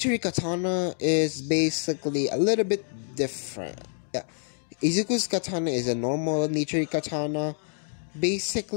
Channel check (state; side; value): silent; right; 60 dB below the other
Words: Katana is basically a little bit different. Yeah. Izuku's Katana is a normal Nichiri Katana,